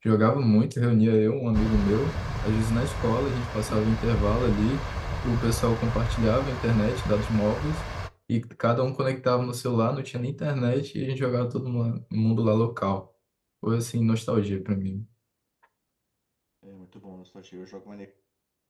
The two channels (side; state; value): both; identical; correlation 1.00